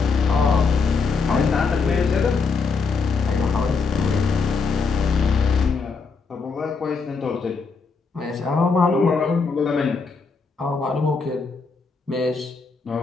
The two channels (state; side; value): quieter; right; 4.8 dB